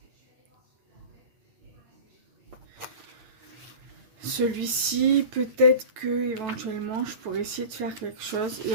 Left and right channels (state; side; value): late; left; 9.1 ms